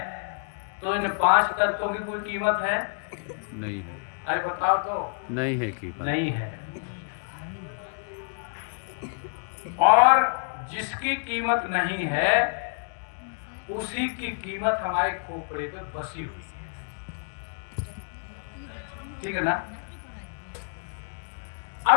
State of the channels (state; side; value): silent; right; digital silence